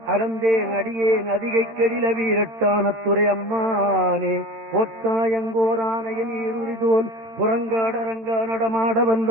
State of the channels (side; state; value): left; late; 13 ms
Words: அலந்தேன் அடியேன் அதிகை கெடில வீரட்டான துறை அம்மானே. போத்தாயங்கோரானையின் ஈருரிதோல் புறங்காடரங்க நடமாட